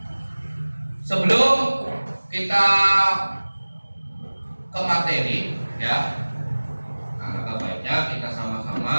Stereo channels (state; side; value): inverted; both; correlation -1.00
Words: Sebelum kita ke materi ya, alangkah baiknya kita